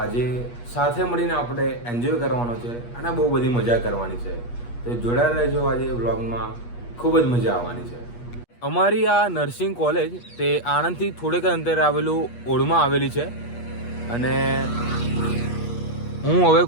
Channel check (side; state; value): right; late; 8.4 ms